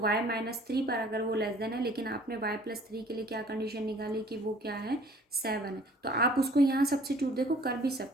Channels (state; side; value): normal; both; correlation 0.53